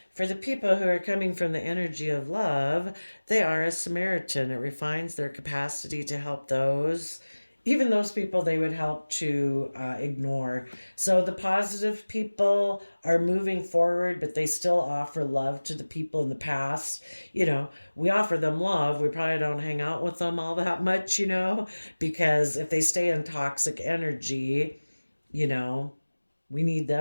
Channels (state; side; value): inverted; both; correlation -1.00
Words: For the people who are coming from the energy of love, they are a Samaritan. It refines their capacity to help those, even those people they would help to ignore. So the positive people are moving forward, but they still offer love to the people in the past. We offer them love. We probably don't hang out with them all that much, because if they stay in toxic energy, you know, we need